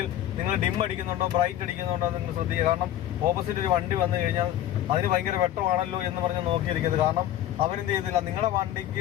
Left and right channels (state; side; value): quieter; right; 12.2 dB